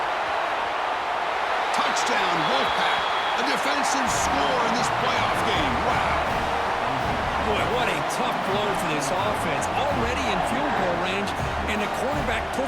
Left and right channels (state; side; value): identical; both; correlation 1.00